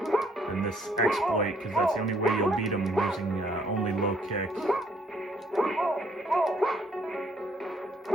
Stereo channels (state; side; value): normal; both; correlation 0.66